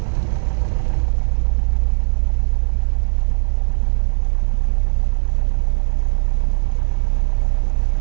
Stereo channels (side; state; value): left; silent; digital silence